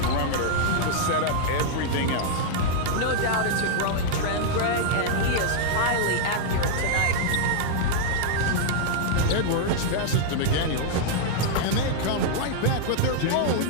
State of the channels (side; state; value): both; different; correlation -0.01